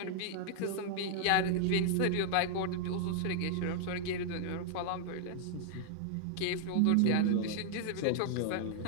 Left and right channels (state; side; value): different; both; correlation 0.00